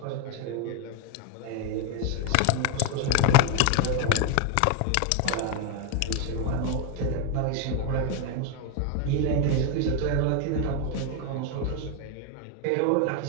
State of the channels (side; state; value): both; different; correlation 0.01